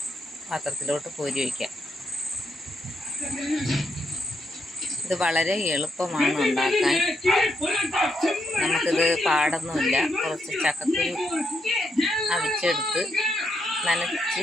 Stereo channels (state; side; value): normal; both; correlation 0.79